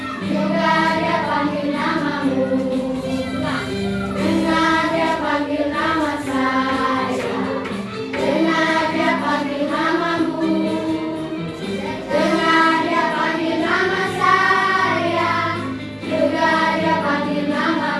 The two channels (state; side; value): identical; both; correlation 1.00